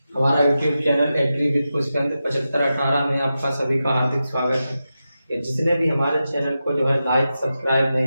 हमारा YouTube channel Agri with Pushpendra 7518 में आपका सभी का हार्दिक स्वागत है। कि जिसने भी हमारे चैनल को जो है लाइक सब्सक्राइब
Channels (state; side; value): inverted; both; correlation -0.91